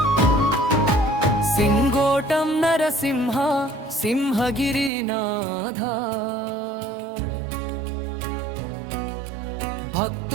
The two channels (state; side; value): drops out; left; at 4.9 s